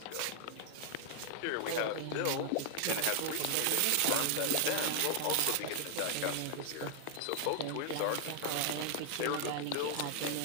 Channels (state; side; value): different; both; correlation 0.00